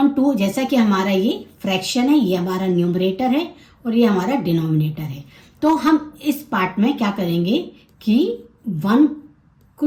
जैसा कि हमारा ये फ्रैक्शन है, ये हमारा न्यूमरेटर है और ये हमारा डिनोमिनेटर है। तो हम इस पार्ट में क्या करेंगे कि 1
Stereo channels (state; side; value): identical; both; correlation 1.00